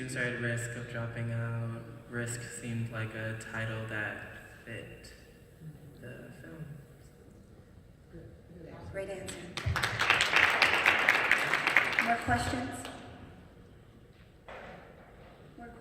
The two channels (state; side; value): identical; both; correlation 1.00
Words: are at risk of dropping out. Risk seemed like a title that fit the film. Great answer. More questions? More